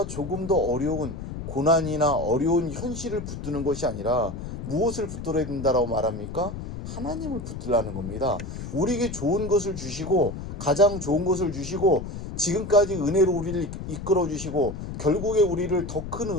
조금 더 어려운 고난이나 어려운 현실을 붙드는 것이 아니라 무엇을 붙들어야 된다라고 말합니까? 하나님을 붙들라는 겁니다. 우리에게 좋은 것을 주시고 가장 좋은 것을 주시고 지금까지 은혜로 우리를 이끌어 주시고 결국에 우리를 더 큰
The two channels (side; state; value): left; noise; rumble, 8 dB below the sound